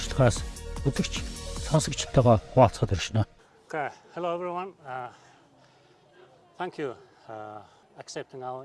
үзэгч сонсогчтойгоо хуваалцахад иршнэ. Okay, hello everyone. Thank you accepting our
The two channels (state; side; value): identical; both; correlation 1.00